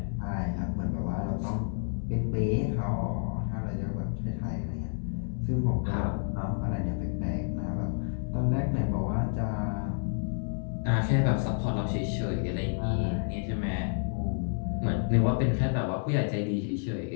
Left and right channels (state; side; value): silent; right; 58 dB below the other